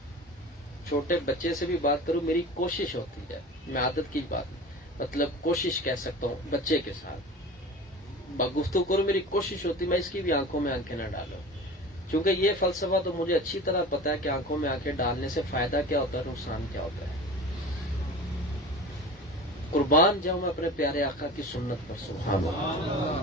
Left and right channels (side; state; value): both; normal; correlation 0.36